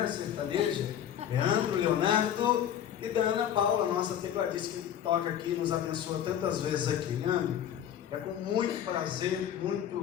sertaneja. Leandro, Leonardo e da Ana Paula, nossa tecladista que toca aqui, nos abençoa tantas vezes aqui, É com muito prazer,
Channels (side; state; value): right; quieter; 10.0 dB